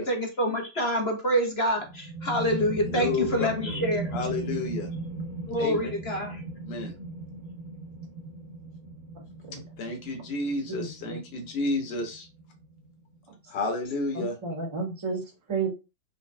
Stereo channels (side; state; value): right; late; 2.9 ms